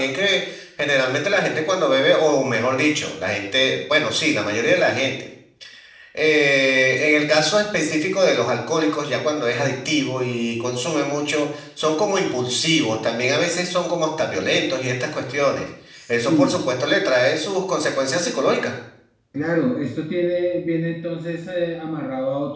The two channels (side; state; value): both; identical; correlation 1.00